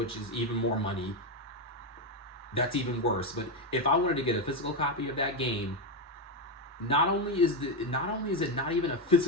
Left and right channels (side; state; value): both; normal; correlation 0.07